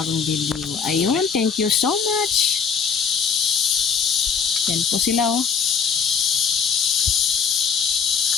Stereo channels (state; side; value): quieter; right; 6.3 dB